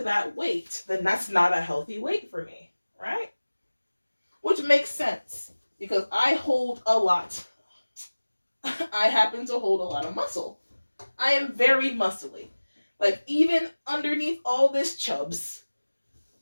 that weight, then that's not a healthy weight for me, right? Which makes sense, because I hold a lot. I happen to hold a lot of muscle. I am very muscly. Like, even underneath all this chubs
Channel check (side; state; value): both; inverted; correlation -1.00